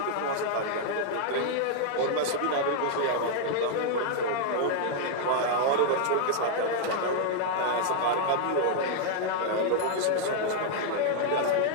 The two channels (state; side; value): different; both; correlation -0.01